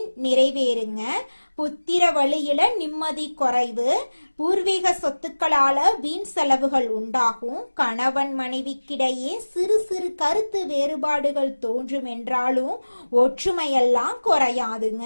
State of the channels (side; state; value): both; inverted; correlation -1.00